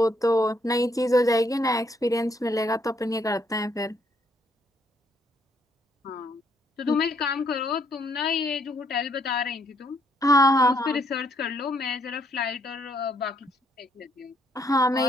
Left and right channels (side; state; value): both; normal; correlation 0.70